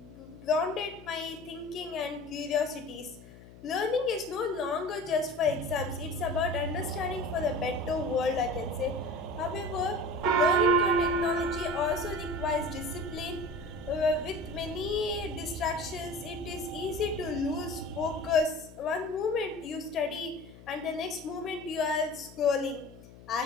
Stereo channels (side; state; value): left; noise; hum, 19 dB below the sound